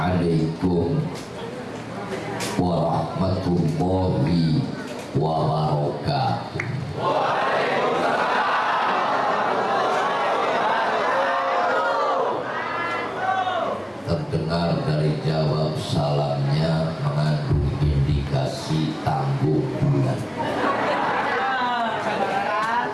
warahmatullahi wabarakatuh. Terdengar dari jawab salamnya mengandung indikasi tangguh bulan.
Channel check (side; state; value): both; identical; correlation 1.00